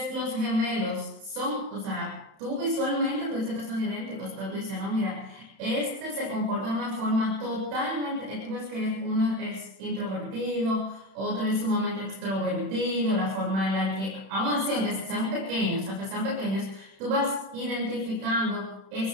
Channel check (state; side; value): late; left; 31 ms